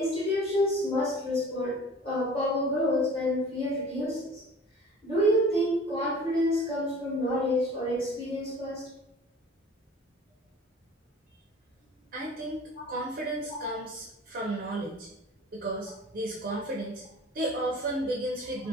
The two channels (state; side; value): normal; both; correlation 0.44